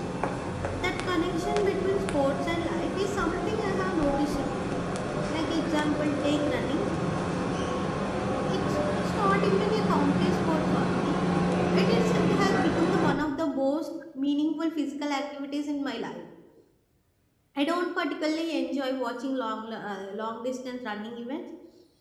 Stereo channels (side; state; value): both; identical; correlation 1.00